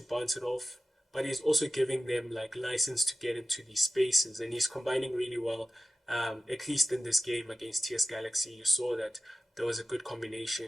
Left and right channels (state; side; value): normal; both; correlation 0.93